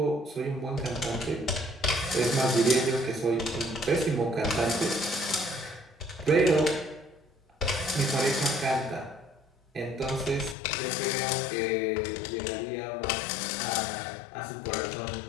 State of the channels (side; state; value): right; drops out; at 10.6 s